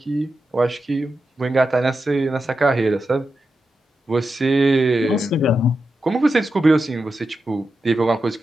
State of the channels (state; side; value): normal; both; correlation 0.89